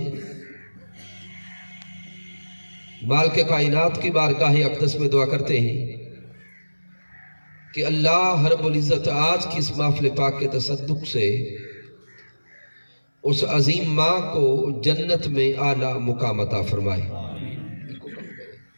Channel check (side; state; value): both; inverted; correlation -1.00